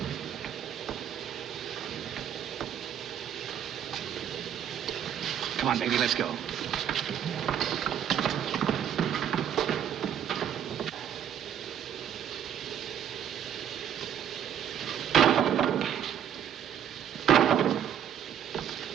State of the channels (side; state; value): left; quieter; 9.4 dB